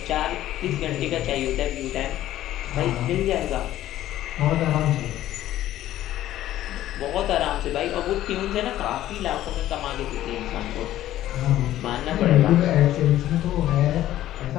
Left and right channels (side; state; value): right; quieter; 13.5 dB